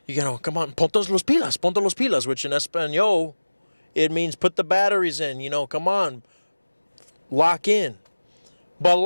come on, ponte los pilas, which in Espanol, it means put the batteries in, you know, come on, lock in. But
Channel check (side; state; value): both; inverted; correlation -1.00